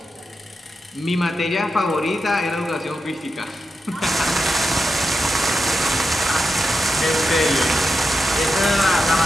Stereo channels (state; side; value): normal; both; correlation 0.88